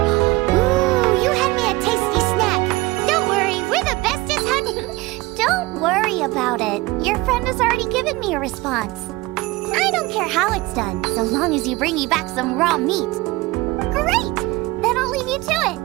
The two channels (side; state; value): left; quieter; 20.7 dB